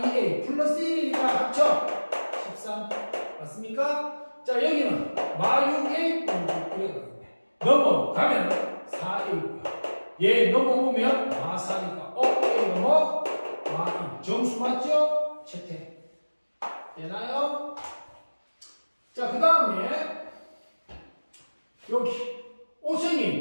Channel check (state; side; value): inverted; both; correlation -1.00